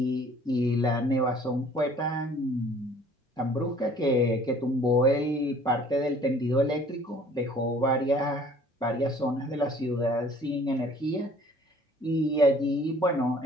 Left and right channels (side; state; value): both; normal; correlation 0.53